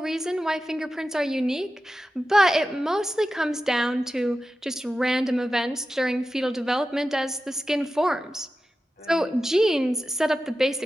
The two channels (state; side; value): normal; both; correlation 0.93